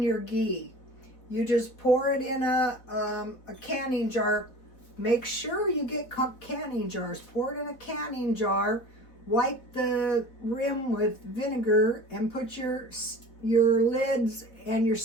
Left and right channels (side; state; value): right; late; 4.0 ms